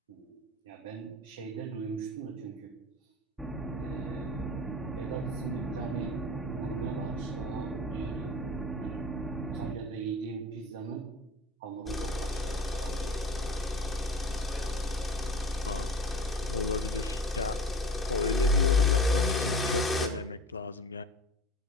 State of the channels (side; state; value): both; normal; correlation 0.38